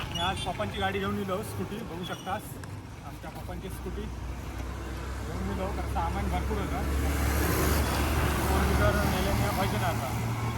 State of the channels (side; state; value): both; identical; correlation 1.00